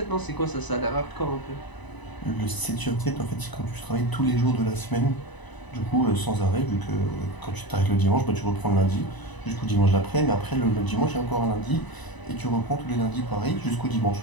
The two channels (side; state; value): right; late; 1.0 ms